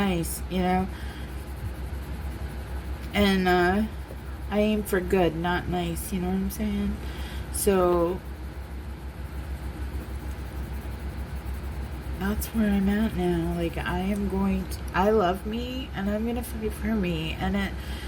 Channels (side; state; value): both; identical; correlation 1.00